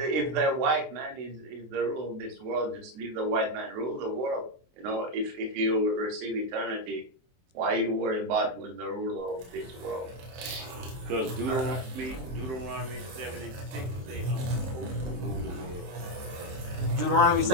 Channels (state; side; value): late; left; 23 ms